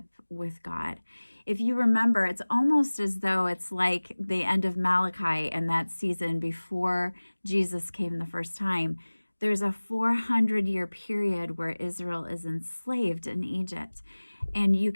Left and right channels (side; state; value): both; inverted; correlation -1.00